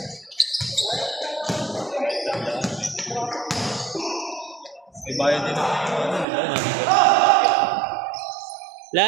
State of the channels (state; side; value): drops out; left; at 6.2 s